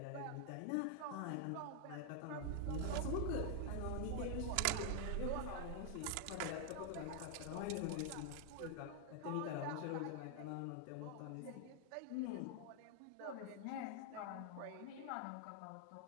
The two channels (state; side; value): different; both; correlation 0.00